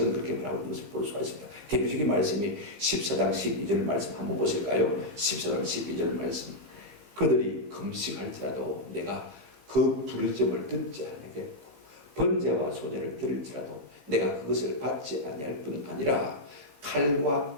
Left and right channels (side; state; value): left; late; 15 ms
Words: 그렇게 말하고 있는 것을 볼 수가 있습니다. 대표적인 말씀이 14장 12절 말씀 한번 보실까요? 14장 12절 말씀 그들이 금식할지라도 내가 그 부르짖음을 듣지 아니하겠고 번제와 소제를 드릴지라도 내가 그것을 받지 아니할 뿐 아니라 칼과